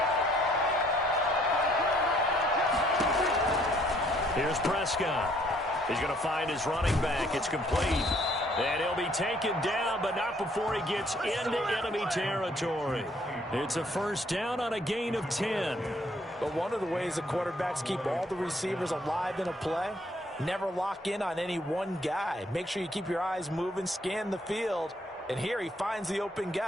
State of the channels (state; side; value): normal; both; correlation 0.64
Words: Here's Prescott. He's going to find his running back. It's complete. And he'll be taken down, but not before he gets into enemy territory. It's a first down on a gain of 10. But one of the ways the quarterbacks keep all the receivers alive in a play, never lock in on any one guy. Make sure you keep your eyes moving, scan the field. And here he finds the open